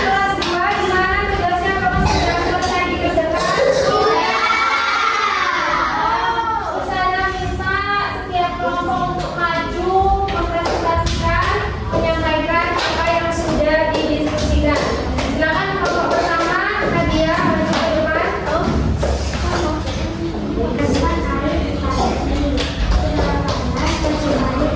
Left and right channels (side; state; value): both; identical; correlation 1.00